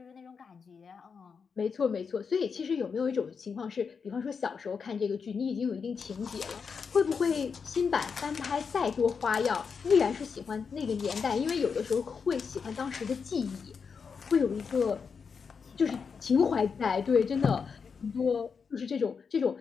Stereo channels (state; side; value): quieter; right; 5.8 dB